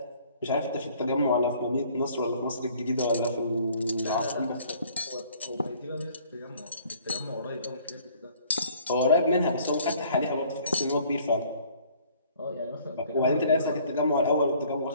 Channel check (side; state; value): both; inverted; correlation -0.57